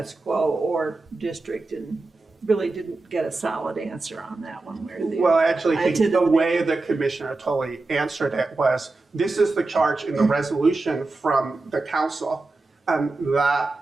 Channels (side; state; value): left; quieter; 3.4 dB